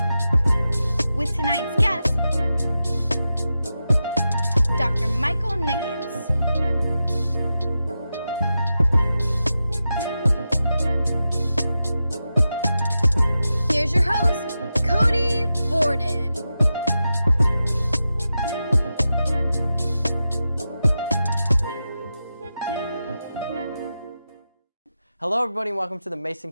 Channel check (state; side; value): inverted; both; correlation -0.90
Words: With tonight's guest, Dr. Michael Nickens. Here's your host, Cody Borden. Hello everybody and welcome to the Mason